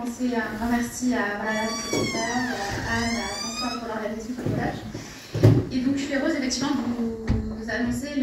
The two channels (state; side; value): identical; both; correlation 1.00